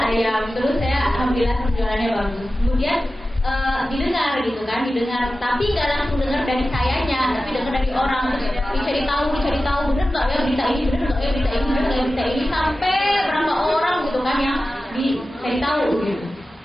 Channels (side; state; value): both; normal; correlation 0.94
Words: ayam, terus saya alhamdulillah penjualannya bagus. Kemudian didengar gitu kan, tapi nggak langsung dengar dari sayanya, tapi dengar dari orang, dicari tahu bener nggak ya berita ini, sampai berapa orang gitu kan yang dicari tahu gitu.